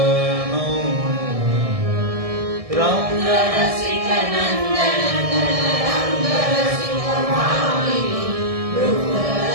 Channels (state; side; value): late; left; 1.6 ms